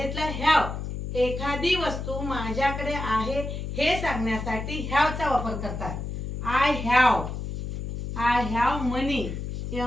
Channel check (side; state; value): left; noise; hum, 5 dB below the sound